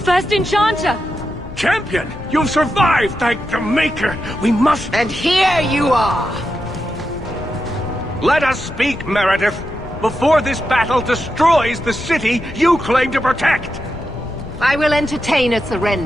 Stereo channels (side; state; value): left; noise; rumble, 13 dB below the sound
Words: First Enchanter! Champion! You've survived, thank the Maker! We must... And here you are! Let us speak, Meredith, before this battle destroys the city you claim to protect! I will entertain a